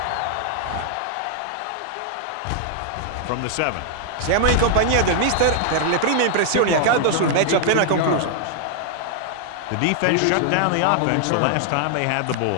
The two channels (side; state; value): both; different; correlation 0.00